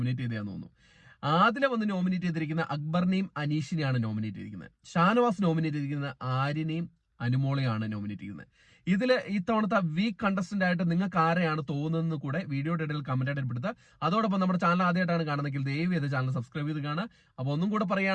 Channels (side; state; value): both; identical; correlation 1.00